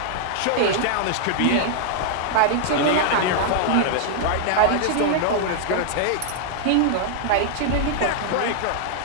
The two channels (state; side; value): different; both; correlation -0.01